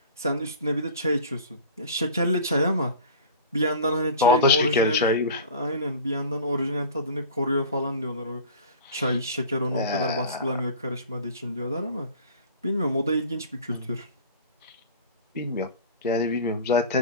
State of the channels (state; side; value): inverted; both; correlation -0.38